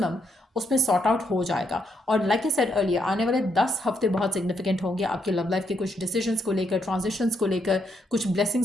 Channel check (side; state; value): both; normal; correlation 0.77